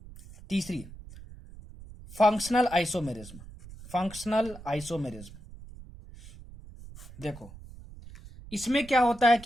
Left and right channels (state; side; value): noise; right; rumble, 17 dB below the sound